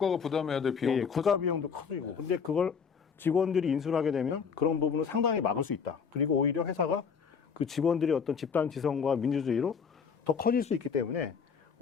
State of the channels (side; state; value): right; quieter; 6.2 dB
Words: 부담해야 될 비용도 예, 국가 비용도 커지고. 근데 그걸 직원들이 인수를 하게 되면 그런 부분을 상당히 막을 수 있다. 그리고 오히려 회사가 그 직원들의 어떤 집단 지성과 민주주의로 더 커질 수 있기 때문에